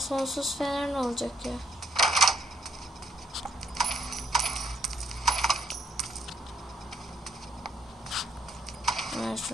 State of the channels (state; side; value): normal; both; correlation 0.72